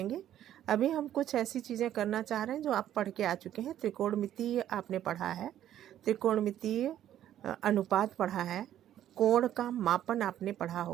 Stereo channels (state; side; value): quieter; left; 11.5 dB